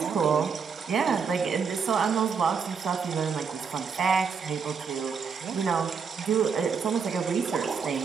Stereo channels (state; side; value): quieter; left; 6.0 dB